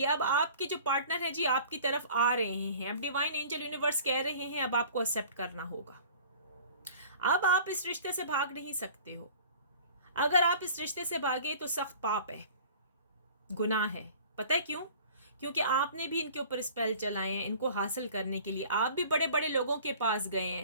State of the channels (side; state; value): both; inverted; correlation -0.46